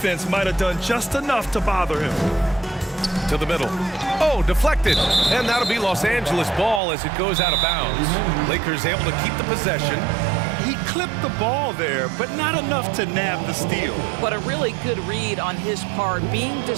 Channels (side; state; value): left; drops out; at 6.8 s